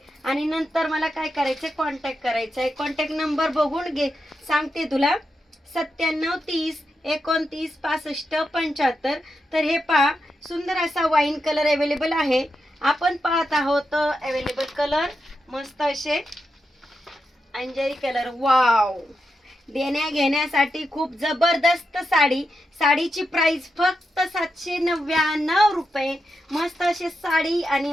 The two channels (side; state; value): both; normal; correlation 0.87